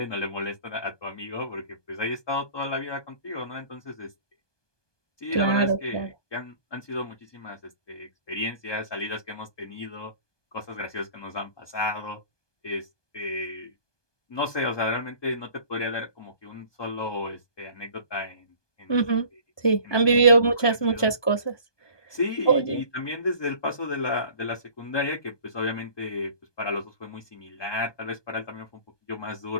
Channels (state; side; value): late; right; 1.2 ms